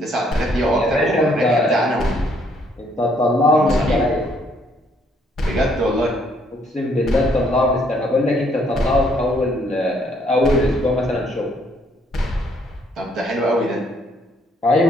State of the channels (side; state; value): both; normal; correlation 0.67